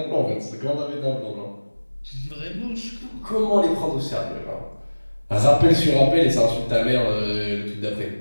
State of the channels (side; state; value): both; inverted; correlation -1.00